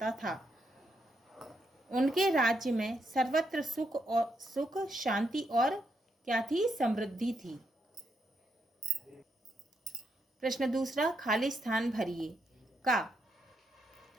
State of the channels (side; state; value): both; normal; correlation 0.79